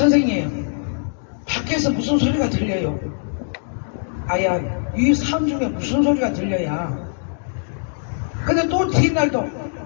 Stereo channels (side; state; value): right; silent; digital silence